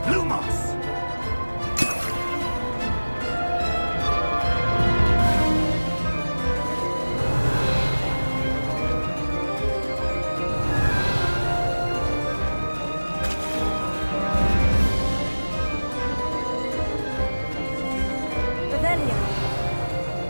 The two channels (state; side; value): inverted; both; correlation -1.00